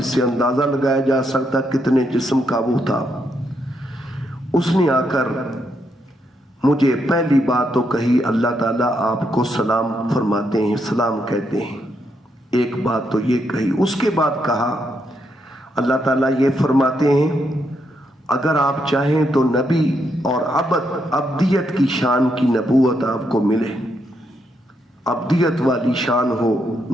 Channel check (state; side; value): normal; both; correlation 0.79